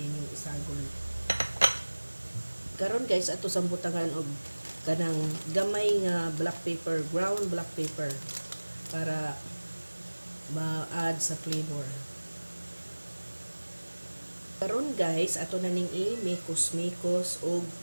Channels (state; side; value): inverted; both; correlation -1.00